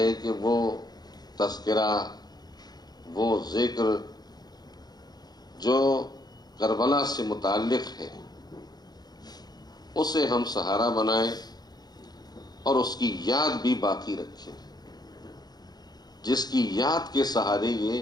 کہ وہ تذکرہ، وہ ذکر جو کربلا سے متعلق ہے اسے ہم سہارا بنائیں اور اس کی یاد بھی باقی رکھیں، جس کی یاد کے سہارے یہ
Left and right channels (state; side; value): late; right; 0.19 ms